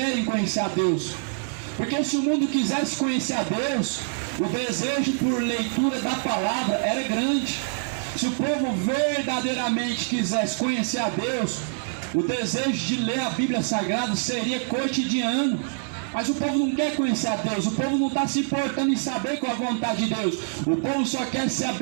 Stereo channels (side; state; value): left; silent; digital silence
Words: conhecer a Deus. Porque se o mundo quisesse conhecer a Deus, o desejo por leitura da palavra era grande. Se o povo verdadeiramente quisesse conhecer a Deus, o desejo de ler a Bíblia Sagrada seria cotidiano. Mas o povo não quer conhecer a Deus, o povo não está se importando em saber qual é a vontade de Deus. O povo só quer ser